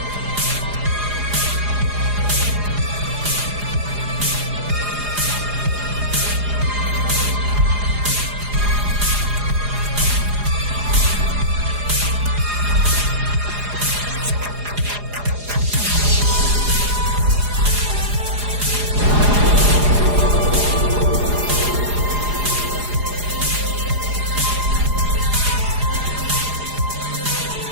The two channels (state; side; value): late; left; 4.9 ms